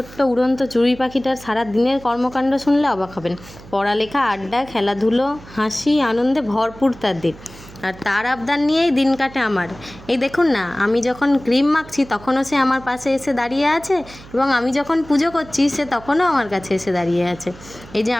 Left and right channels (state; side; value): noise; right; hum, 19 dB below the sound